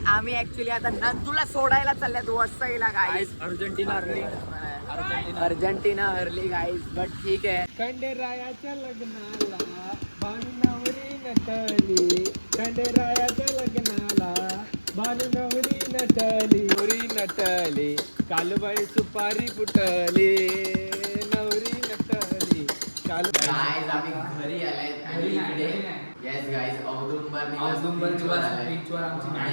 आम्ही ऍक्च्युली आता नंदूला सोडायला चालल्यात वसईला. गाईज अर्जेंटिना हरली. अर्जेंटिना हरली गाईज बट ठीक आहे. खंडेरायाच्या लग्नाला भानू नवरी नटली. खंडेरायाच्या लग्नाला भानू नवरी नटली. नवरी नटली कालबाई सुपारी फुटली. नवरी नटली काल. गाईज आम्ही घरी आलाय आणि इकडे येस गाईज औदुंबर बीचवर आमची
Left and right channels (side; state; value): both; inverted; correlation -1.00